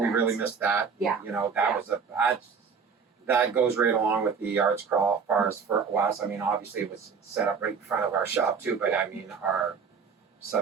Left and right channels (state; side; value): quieter; left; 5.9 dB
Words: event. really missed that. Yeah. That was that goes right along with the arts crawl for us. I mean, obviously it was set up right in front of our shop too, but I mean, our